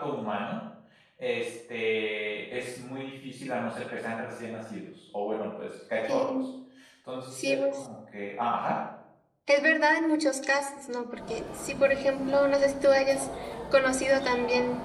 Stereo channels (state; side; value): identical; both; correlation 1.00